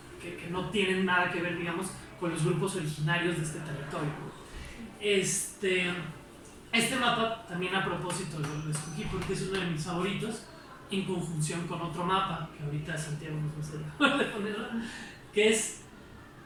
no tienen nada que ver, digamos, con los grupos originarios de este territorio. Este mapa también a propósito lo escogí porque es uno de mis favoritos, en conjunción con otro mapa que ahorita Santiago nos va a hacer de ponerlo, que es,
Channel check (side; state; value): both; identical; correlation 1.00